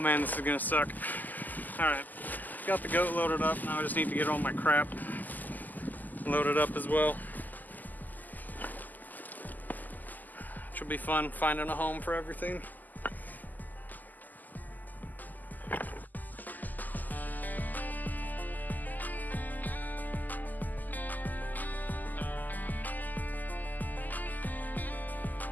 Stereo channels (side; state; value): right; late; 0.084 ms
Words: man, this is gonna suck. Alright, got the goat loaded up. Now I just need to get all my crap loaded up as well. Will be fun finding a home for everything.